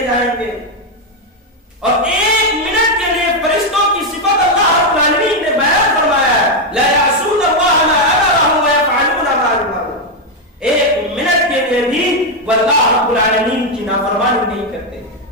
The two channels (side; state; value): both; normal; correlation 0.04